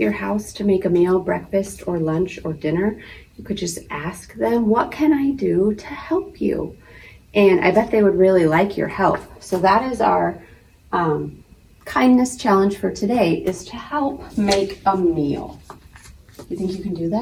house to make a meal, breakfast or lunch or dinner? You could just ask them, what can I do to help you? And I bet they would really like your help. So that is our kindness challenge for today, is to help make a meal. You think you can do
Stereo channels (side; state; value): both; identical; correlation 1.00